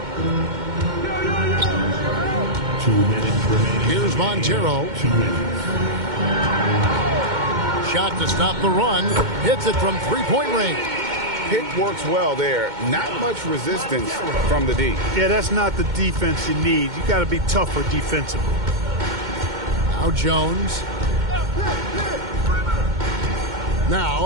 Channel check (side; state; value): left; late; 2.2 ms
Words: 2 minutes remaining. Here's Montero. 2 minutes. Shot to stop the run. Hits it from 3-point range. Pick works well there. Not much resistance from the D. Yeah, that's not the defense you need. You got to be tougher defensively. Now Jones.